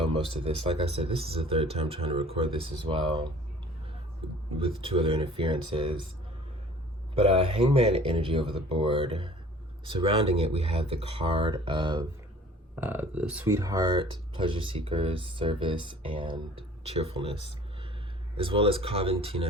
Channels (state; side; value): normal; both; correlation 0.48